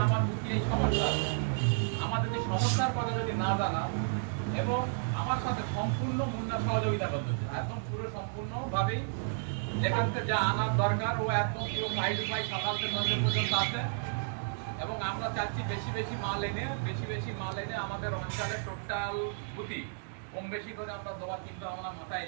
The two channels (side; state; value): left; silent; digital silence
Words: আমার বুঝি এই সমস্যা, আমাদের যে সমস্যার কথা যদি না জানাও এবং আমার সাথে সম্পূর্ণ মূল্য সহযোগিতা করতে হচ্ছে, একদম পুরো সম্পূর্ণভাবেই যেখান থেকে যা আনার দরকার ও একদম পুরো সাইড উপায় সকাল থেকে সন্ধ্যে পর্যন্ত আছে। এবং আমরা চাচ্ছি বেশি মাল এনে আমাদের অঞ্চলে টোটাল বুথি কম বেশি করে আমরা দেওয়ার চিন্তা ভাবনা মাথায়